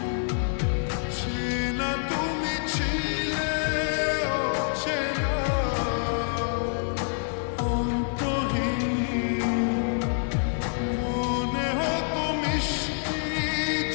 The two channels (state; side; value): silent; right; 60 dB below the other